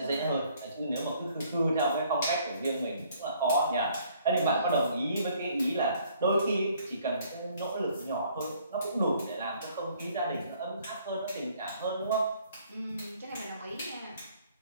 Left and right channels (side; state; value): both; inverted; correlation -0.62